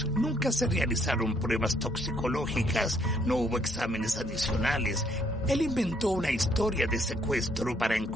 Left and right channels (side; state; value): both; normal; correlation 0.68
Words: Nunca se realizaron pruebas toxicológicas, no hubo exámenes adicionales. Él inventó una historia de secuestro para